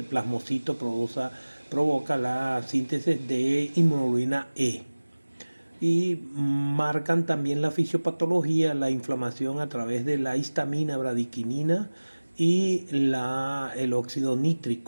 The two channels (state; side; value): inverted; both; correlation -1.00